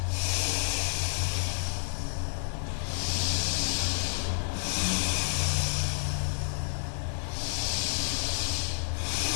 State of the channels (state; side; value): silent; right; digital silence